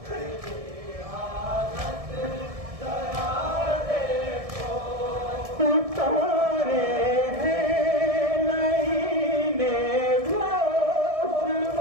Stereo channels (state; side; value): late; left; 1.7 ms